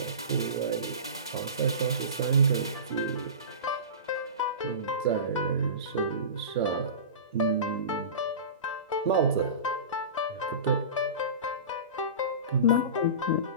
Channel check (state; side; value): inverted; both; correlation -0.31